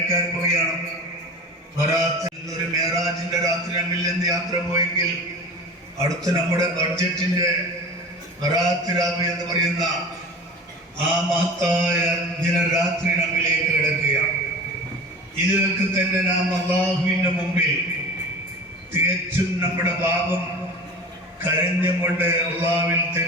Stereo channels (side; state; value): both; normal; correlation 0.35